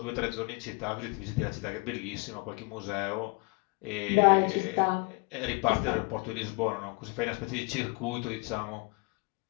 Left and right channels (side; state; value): right; quieter; 28.8 dB